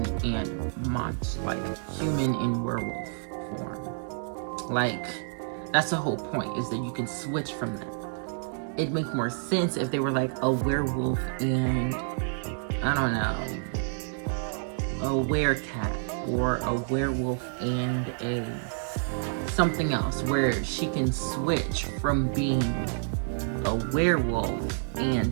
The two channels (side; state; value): left; silent; 59 dB below the other